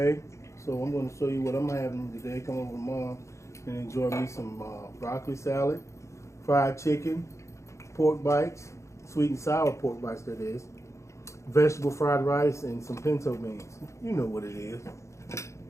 so I'm gonna show you what I'm having today. Come over to Mom and enjoy me some broccoli salad, fried chicken, pork bites, sweet and sour pork bites that is, vegetable fried rice, and some pinto beans. You know what it is.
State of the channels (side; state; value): right; late; 0.14 ms